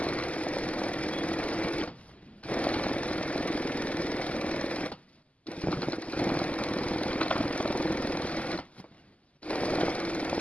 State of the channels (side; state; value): right; late; 0.067 ms